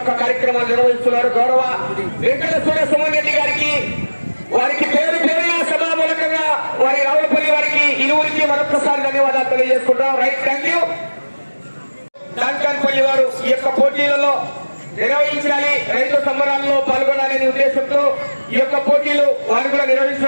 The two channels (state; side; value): inverted; both; correlation -1.00